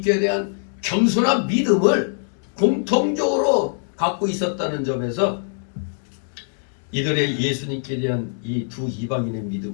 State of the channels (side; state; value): right; silent; 64 dB below the other